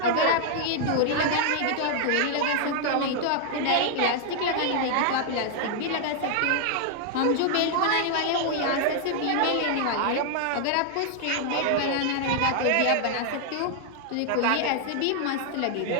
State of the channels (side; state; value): both; different; correlation 0.00